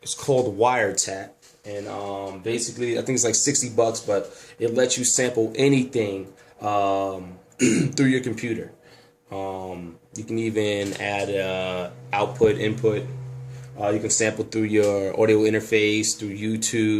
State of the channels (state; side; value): identical; both; correlation 1.00